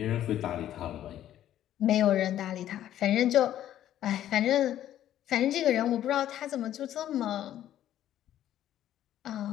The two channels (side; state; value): right; quieter; 11.9 dB